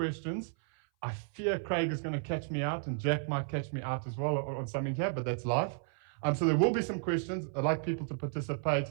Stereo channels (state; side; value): silent; left; 56 dB below the other